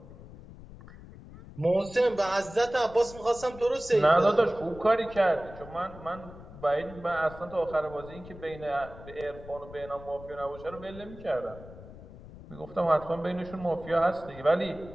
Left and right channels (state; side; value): noise; left; rumble, 16 dB below the sound